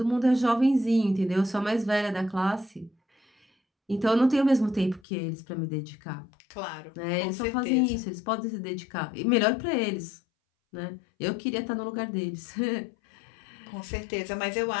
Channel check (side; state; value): right; drops out; at 5.0 s